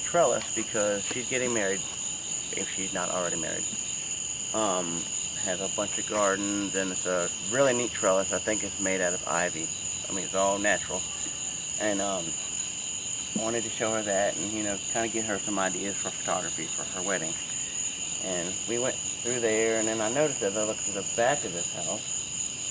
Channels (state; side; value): identical; both; correlation 1.00